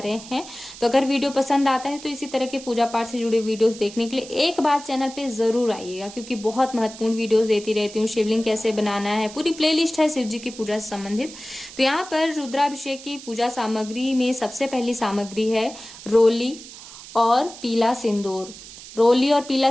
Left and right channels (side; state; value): right; noise; hiss, 16 dB below the sound